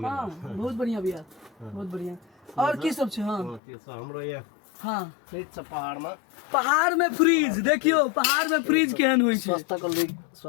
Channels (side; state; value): right; drops out; at 3.6 s